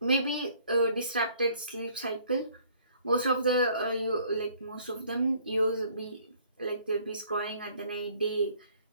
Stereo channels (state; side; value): inverted; both; correlation -0.59